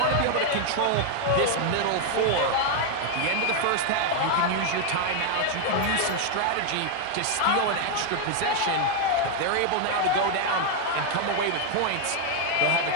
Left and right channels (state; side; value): different; both; correlation 0.00